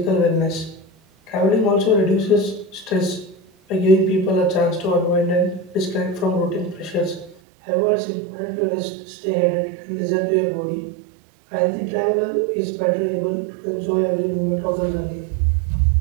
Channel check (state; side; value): drops out; left; at 7.4 s